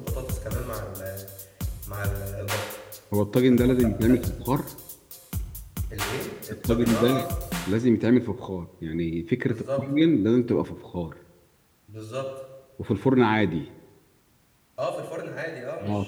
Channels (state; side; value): identical; both; correlation 1.00